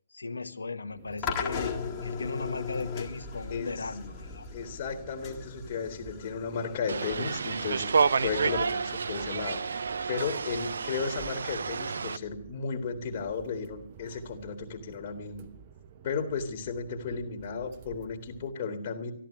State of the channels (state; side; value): inverted; both; correlation -0.68